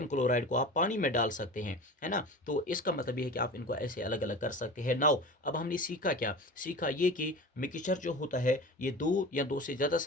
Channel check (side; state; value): both; normal; correlation 0.34